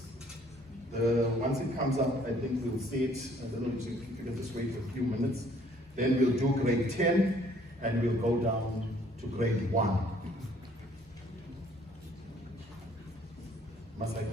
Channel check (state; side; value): normal; both; correlation 0.60